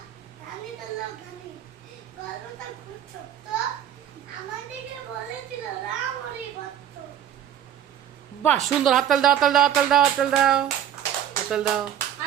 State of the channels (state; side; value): quieter; left; 10.3 dB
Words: রানী হলো গানি। গল্পটা খুব ছোট্ট, আমাদেরকে বলেছিল রাম হরি ভক্ত। বাহ সুন্দর, হাততাল দাও, হাততাল দাও, হাততাল দাও, হাততাল দাও, হাততাল দাও।